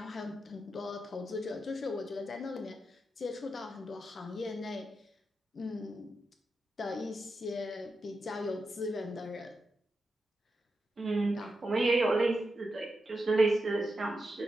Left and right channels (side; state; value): both; normal; correlation 0.88